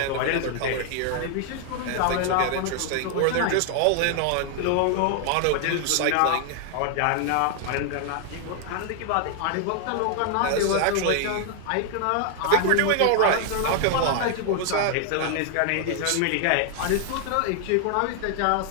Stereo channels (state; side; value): different; both; correlation 0.00